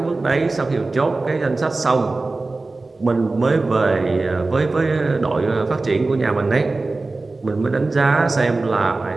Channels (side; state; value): left; quieter; 3.4 dB